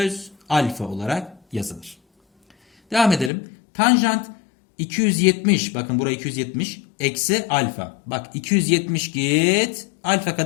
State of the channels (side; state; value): right; drops out; at 3.3 s